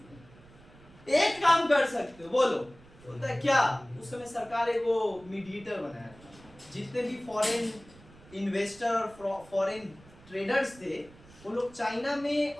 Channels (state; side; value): noise; right; rumble, 23 dB below the sound